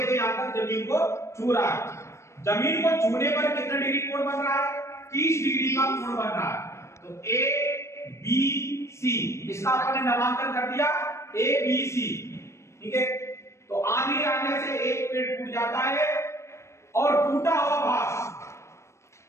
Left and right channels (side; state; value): right; late; 0.13 ms